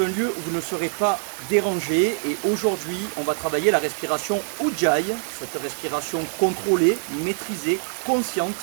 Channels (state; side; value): silent; left; 63 dB below the other